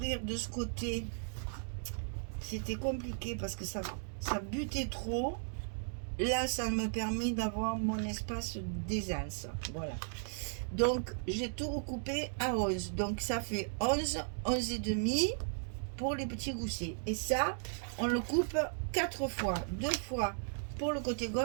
de ce côté. C'était compliqué parce que ça butait trop. Là, ça me permet d'avoir mon espace d'aisance. Voilà. Donc, j'ai tout recoupé à 11. Donc, ça fait 11, 11,5 pour les petits goussets. Et ça, on le coupe 4 fois. 2 fois pour le côté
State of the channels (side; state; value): left; silent; digital silence